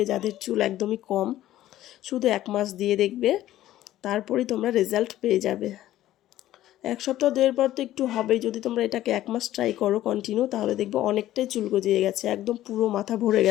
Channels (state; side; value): quieter; right; 13.9 dB